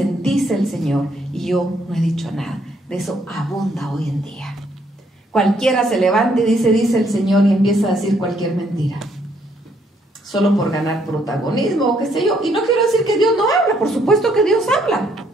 dice el Señor, y yo no he dicho nada. De eso abunda hoy en día. Cualquiera se levanta y dice el Señor, y empieza a decir cualquier mentira, solo por ganar protagonismo o qué sé yo. Y no quiero decir que Dios no habla, por supuesto que Dios habla.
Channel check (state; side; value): normal; both; correlation 0.70